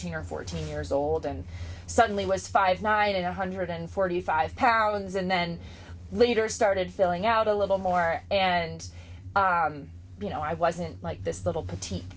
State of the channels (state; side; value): identical; both; correlation 1.00